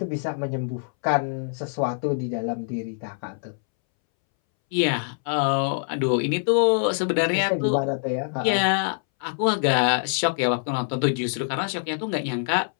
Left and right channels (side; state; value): right; silent; 62 dB below the other